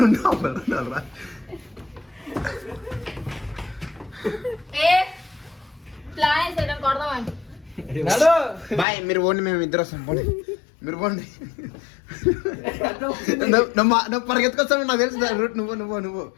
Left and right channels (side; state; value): right; drops out; at 8.8 s